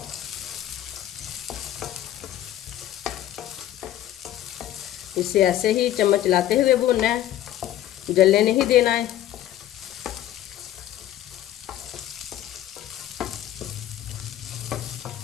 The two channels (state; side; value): quieter; right; 12.7 dB